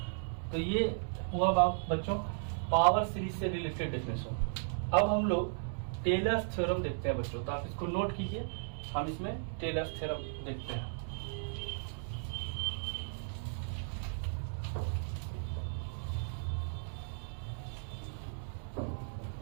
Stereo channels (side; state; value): left; silent; digital silence